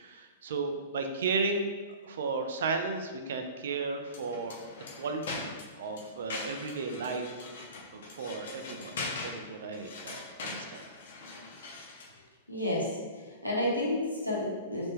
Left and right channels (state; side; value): inverted; both; correlation -0.41